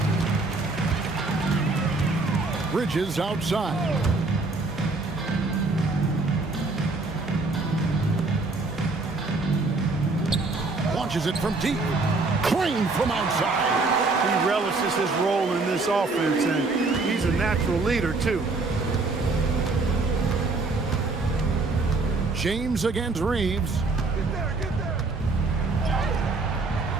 Bridges outside. Launches it from deep. Clean from outside. He relishes his role in this offense, and he's a natural leader, too. James against Reeves.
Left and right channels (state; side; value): quieter; left; 3.6 dB